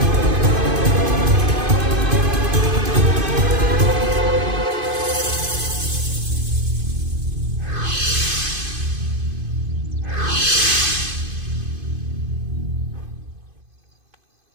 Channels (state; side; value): late; left; 2.5 ms